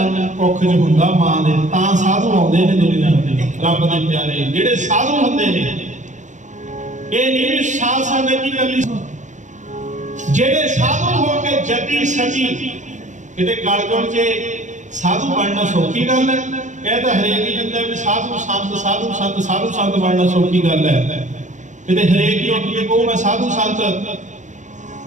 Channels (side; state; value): left; late; 0.35 ms